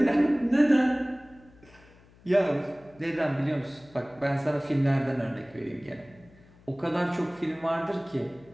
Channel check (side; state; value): left; noise; hum, 27 dB below the sound